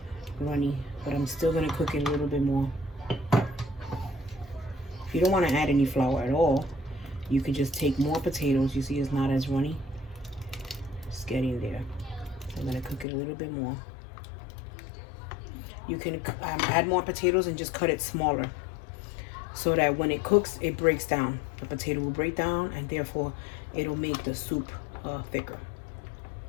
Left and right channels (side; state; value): right; drops out; at 13.1 s